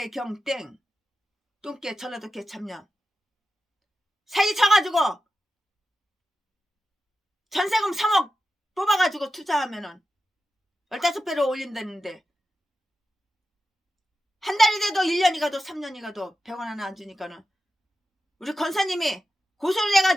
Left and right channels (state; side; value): normal; both; correlation 0.91